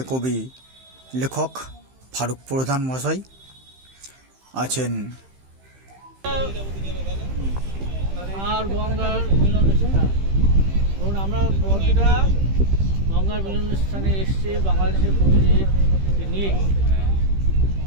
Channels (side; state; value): left; late; 15 ms